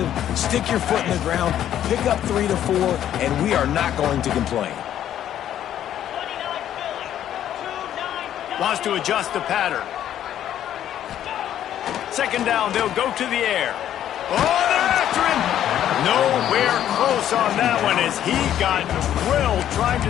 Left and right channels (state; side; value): quieter; right; 11.0 dB